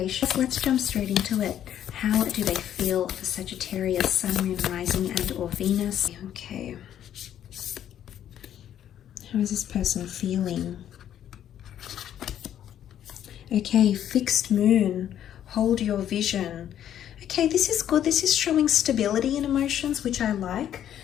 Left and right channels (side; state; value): right; quieter; 10.5 dB